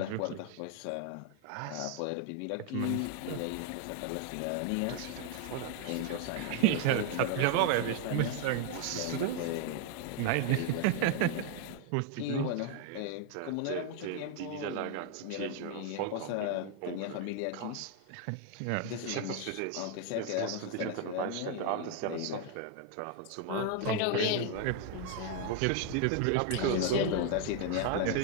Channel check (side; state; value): both; different; correlation 0.00